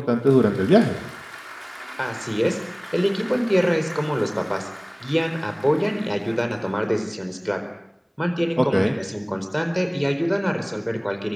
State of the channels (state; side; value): identical; both; correlation 1.00